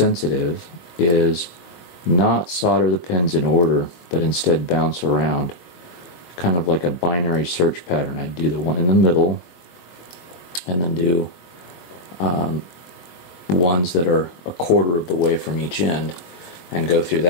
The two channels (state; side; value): late; right; 22 ms